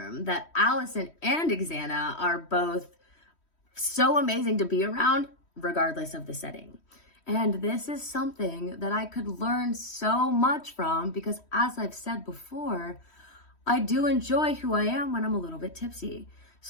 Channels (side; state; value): right; late; 3.1 ms